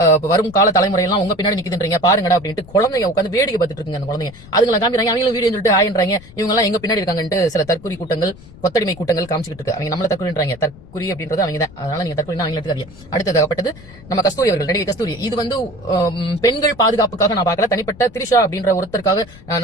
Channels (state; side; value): noise; left; rumble, 20 dB below the sound